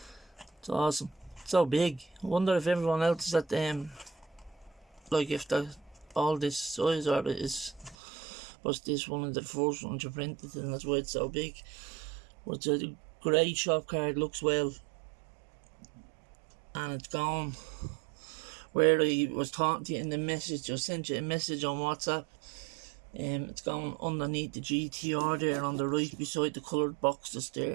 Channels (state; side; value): drops out; left; at 8.0 s